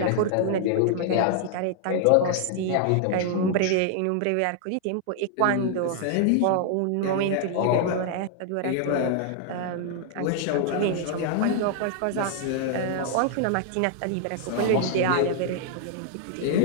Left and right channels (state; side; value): different; both; correlation 0.00